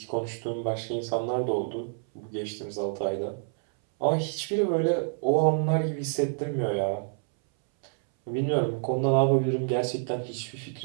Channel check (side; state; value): left; silent; 59 dB below the other